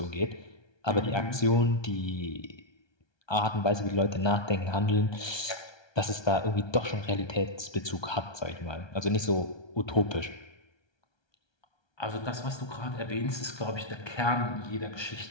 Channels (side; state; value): right; late; 1.3 ms